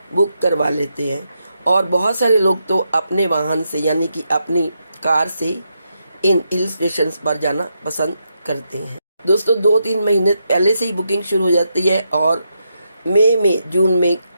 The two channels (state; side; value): inverted; both; correlation -0.83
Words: बुक करवा लेते हैं। और बहुत सारे लोग तो अपने वाहन से, यानी कि अपनी कार से इन हिल स्टेशंस पर जाना पसंद करते हैं। दोस्तों, 2-3 महीने पहले से ही बुकिंग शुरू हो जाती है और मई में, जून में